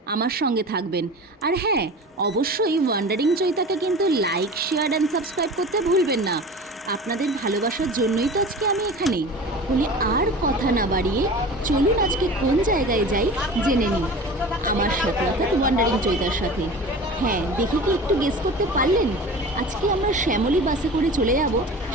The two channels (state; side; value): normal; both; correlation 0.36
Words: আমার সঙ্গে থাকবেন। আর হ্যাঁ, অবশ্যই ওয়ান্ডারিং চৈতাকে কিন্তু লাইক, শেয়ার অ্যান্ড সাবস্ক্রাইব করতে ভুলবেন না। আপনাদের ভালোবাসার জন্যই তো আজকে আমি এখানে। বলে আর কথা না বাড়িয়ে চলুন আজকে কোন জায়গায় যাই জেনে নিই আমার সাথে, অর্থাৎ ওয়ান্ডারিং চৈতার সাথে। হ্যাঁ, দেখি কি একটু গেস করতে পারলেন? আজকে আমরা শ্যামলী বাসে করে চলে যাব